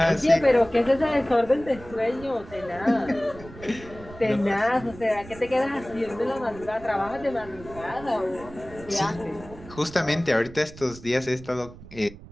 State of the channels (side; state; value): right; noise; rumble, 17 dB below the sound